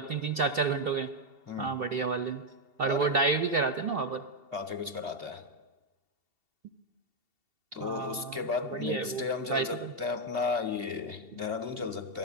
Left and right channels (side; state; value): left; late; 2.7 ms